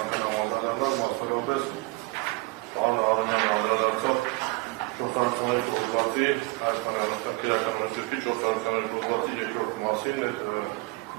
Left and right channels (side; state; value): left; quieter; 24.4 dB